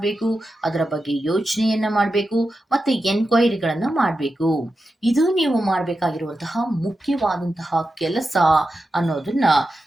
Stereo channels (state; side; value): normal; both; correlation 0.90